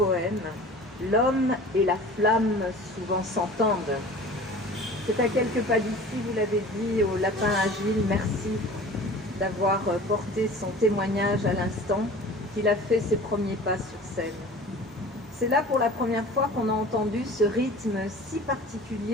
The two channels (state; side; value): normal; both; correlation 0.41